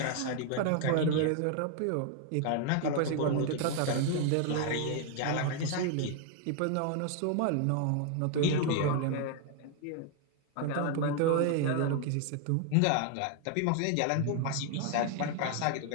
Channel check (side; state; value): both; different; correlation 0.00